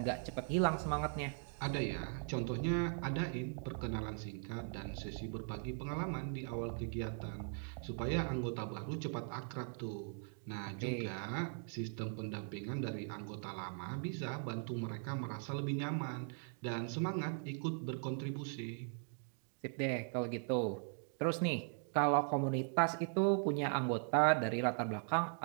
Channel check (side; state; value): left; silent; 51 dB below the other